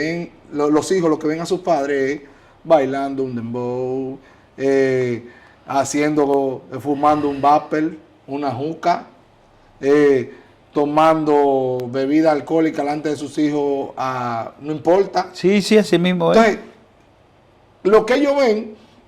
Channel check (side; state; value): both; identical; correlation 1.00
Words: los hijos, lo que ven a sus padres es bailando un dembow, fumando un vapor, una juca, tomando bebida alcohólica delante de sus hijos, no importa. Sí, sí, así mismo. Entonces, lo que ellos ven,